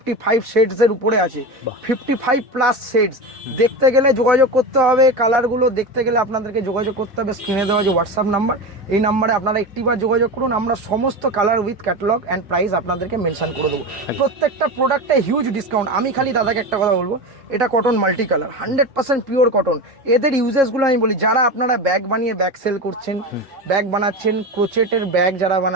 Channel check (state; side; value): normal; both; correlation 0.23